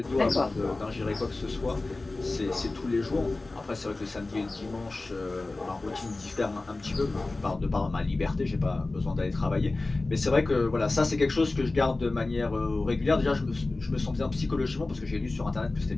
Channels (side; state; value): right; quieter; 3.2 dB